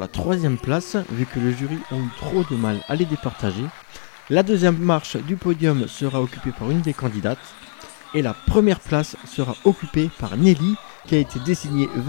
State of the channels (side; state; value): right; silent; digital silence